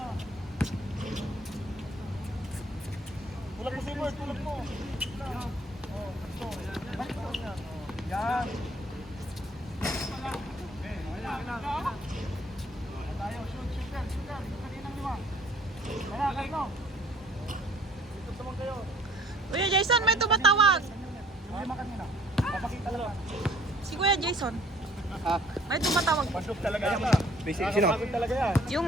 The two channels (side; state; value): both; normal; correlation 0.57